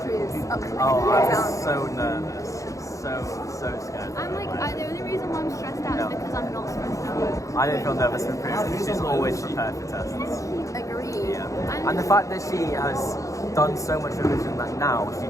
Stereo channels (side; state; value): right; late; 0.16 ms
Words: upcoming I'm exam? so nervous. So scared. I'm like, the only reason why I'm stressed out is because I'm not stressed out. I don't feel nervous for Priya because she's always prepared for tests. Agree. Yeah. And the fact that she has done so much revision that now she